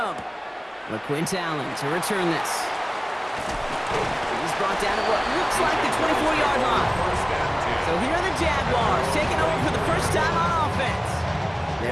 LaQuint Allen to return this. He's brought down at what looks like the 24-yard line. So here are the Jaguars taking over for the first time on offense.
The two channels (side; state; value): both; identical; correlation 1.00